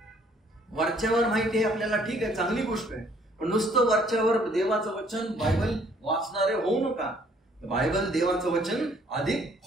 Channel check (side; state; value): both; normal; correlation 0.62